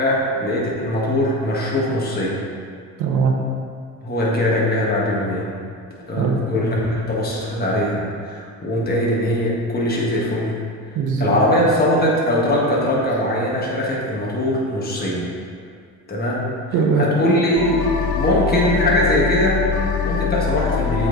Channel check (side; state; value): both; normal; correlation 0.23